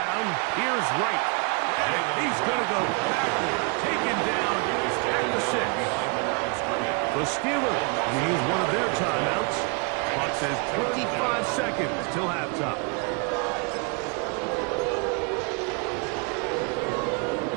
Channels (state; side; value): quieter; left; 34.3 dB